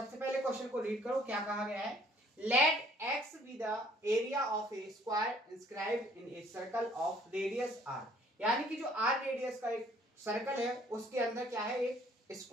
पहले क्वेश्चन को रीड करो। क्या कहा गया है? Let X be the area of a square inscribed in a circle of radius R. यानी कि जो आर रेडियस का एक सर्कल है उसके अंदर क्या है, एक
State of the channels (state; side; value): normal; both; correlation 0.60